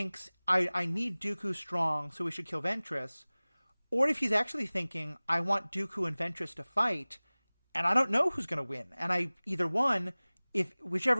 I need Dooku strong, so we should kill Ventress, or if he's actually thinking, I want Dooku and Ventress to fight, and I don't know who's going to win. And if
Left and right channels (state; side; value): inverted; both; correlation -1.00